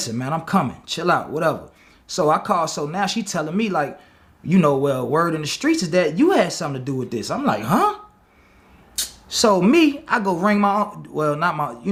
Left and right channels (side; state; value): both; identical; correlation 1.00